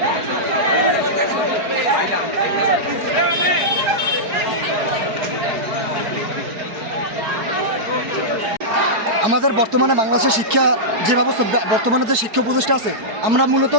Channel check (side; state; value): left; late; 4.6 ms